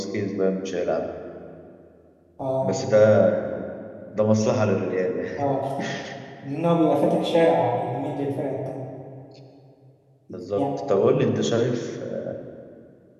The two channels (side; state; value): both; identical; correlation 1.00